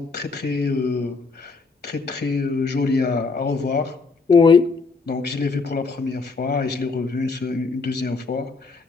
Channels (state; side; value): quieter; right; 4.3 dB